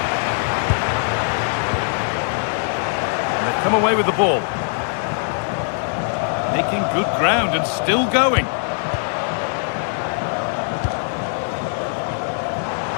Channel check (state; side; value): silent; right; 63 dB below the other